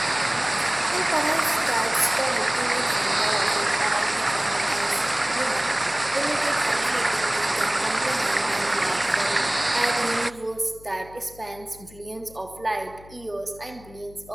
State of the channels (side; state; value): left; noise; hum, 21 dB below the sound